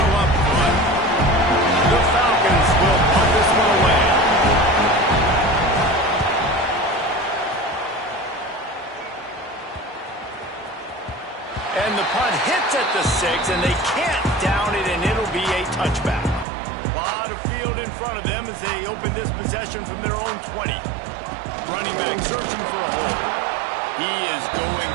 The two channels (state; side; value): drops out; left; at 16.4 s